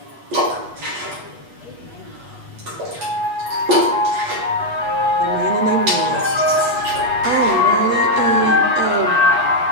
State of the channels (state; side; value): late; left; 8.2 ms